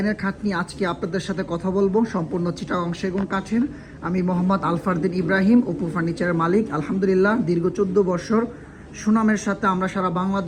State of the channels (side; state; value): both; identical; correlation 1.00